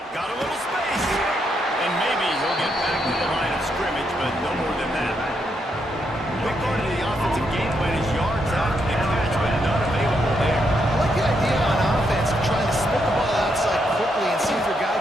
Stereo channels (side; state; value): both; normal; correlation 0.79